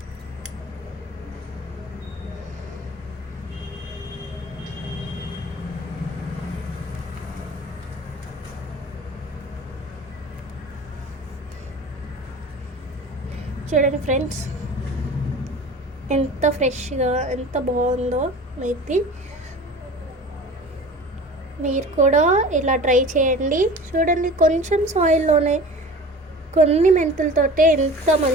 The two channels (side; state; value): both; normal; correlation 0.39